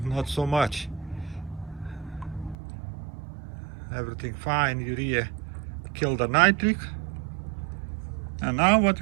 not so much. Everything fine. Urea kill the nitric. And now what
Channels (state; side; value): drops out; left; at 2.6 s